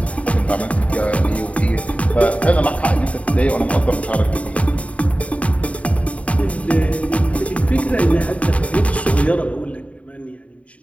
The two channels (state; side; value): late; right; 0.066 ms